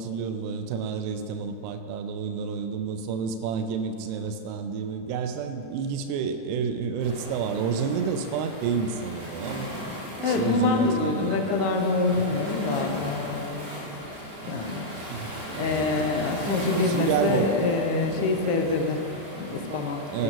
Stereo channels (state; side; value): late; left; 36 ms